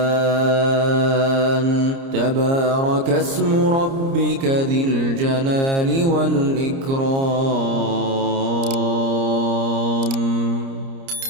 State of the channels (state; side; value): late; left; 30 ms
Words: تبارك اسم ربك ذي الجلال والإكرام